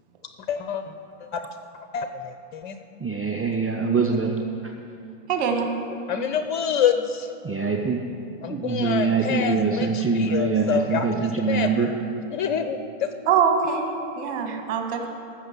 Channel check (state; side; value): late; right; 2.6 ms